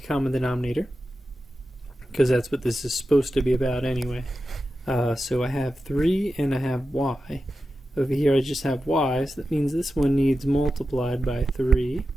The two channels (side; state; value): both; normal; correlation 0.92